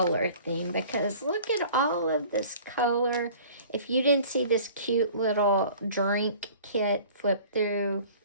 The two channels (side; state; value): both; inverted; correlation -0.47